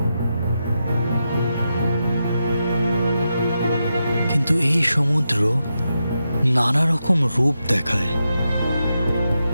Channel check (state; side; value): inverted; both; correlation -0.87